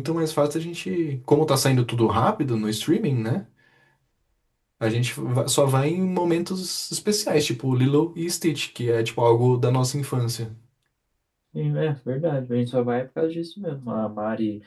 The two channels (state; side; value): identical; both; correlation 1.00